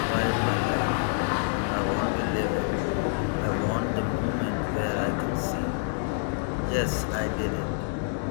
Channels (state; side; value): silent; right; digital silence